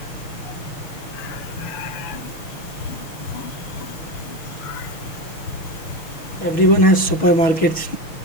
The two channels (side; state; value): right; late; 6.3 ms